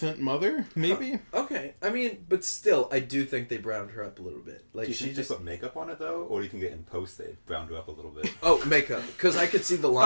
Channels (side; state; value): both; inverted; correlation -1.00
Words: mother, maybe? okay. I mean, but still, I do think they browned her up a little bit. Like Do you she think they just put makeup on it though, or do you think in post they browned her up a little bit? makeup because I could see the I